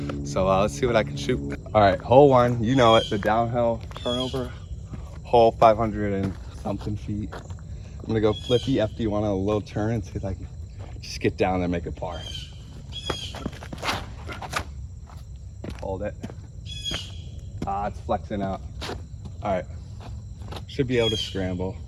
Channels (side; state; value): both; identical; correlation 1.00